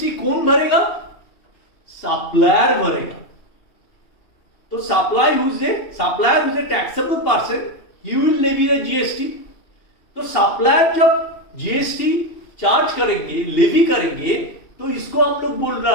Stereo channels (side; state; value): right; late; 2.8 ms